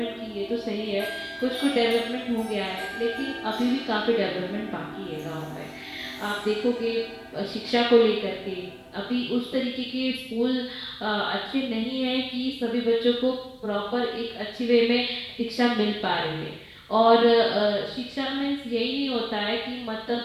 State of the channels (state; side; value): identical; both; correlation 1.00